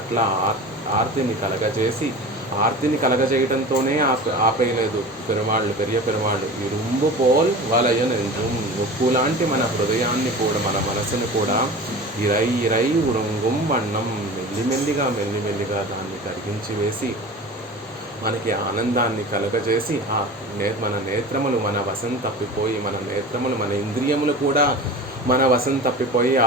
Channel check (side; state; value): both; normal; correlation 0.35